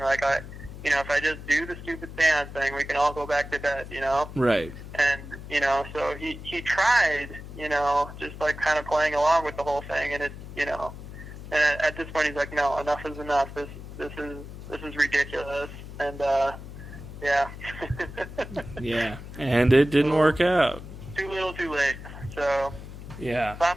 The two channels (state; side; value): noise; left; hum, 12 dB below the sound